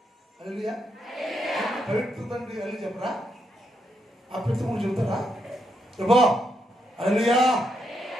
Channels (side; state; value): both; normal; correlation 0.80